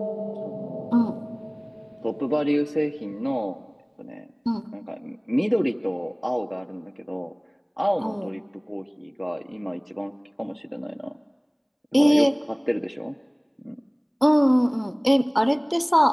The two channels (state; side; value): identical; both; correlation 1.00